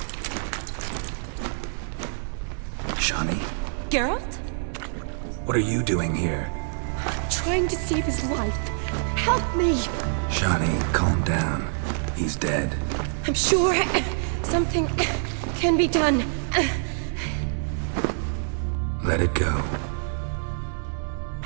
Shani? Geralt? What are you doing here? Trying to save his life. Help me. Shani, calm down. He's dead. I'm sure something can be done. Let it go.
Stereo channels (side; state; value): left; silent; digital silence